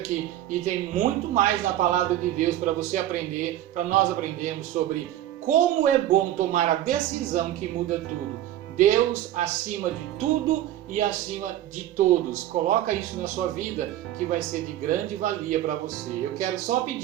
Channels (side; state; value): left; quieter; 13.1 dB